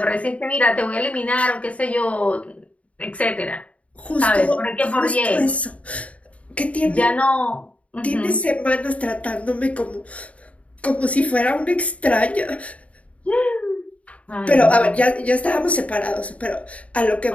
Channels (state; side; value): late; right; 0.066 ms